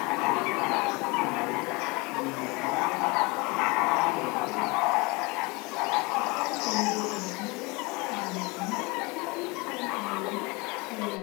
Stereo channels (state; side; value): quieter; right; 26.5 dB